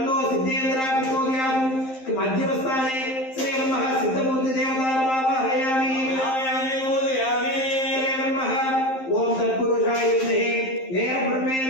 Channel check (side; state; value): right; late; 11 ms